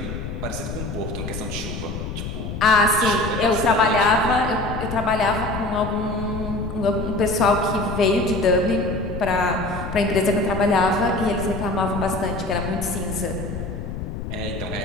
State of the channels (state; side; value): noise; left; rumble, 6 dB below the sound